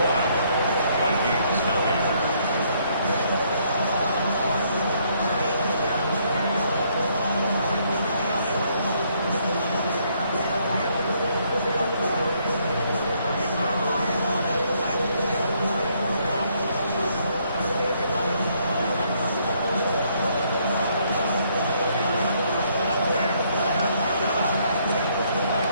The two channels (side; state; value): both; inverted; correlation -0.69